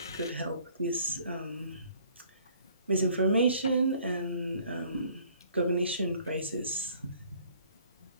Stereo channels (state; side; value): inverted; both; correlation -0.58